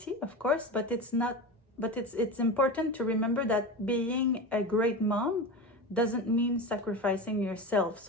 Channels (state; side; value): normal; both; correlation 0.25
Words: of course, but it's important to remember that being a great mom doesn't mean sacrificing yourself.